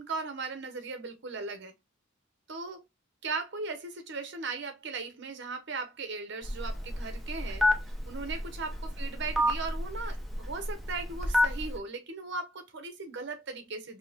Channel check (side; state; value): both; normal; correlation 0.61